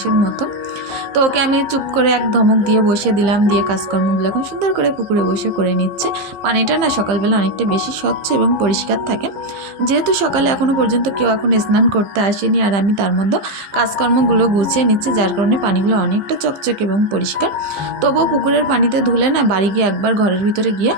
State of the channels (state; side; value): late; left; 15 ms